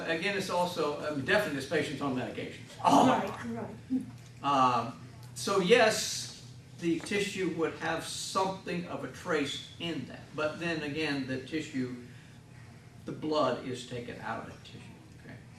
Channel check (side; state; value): both; identical; correlation 1.00